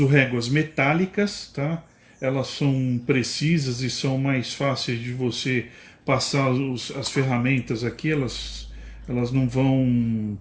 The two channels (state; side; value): identical; both; correlation 1.00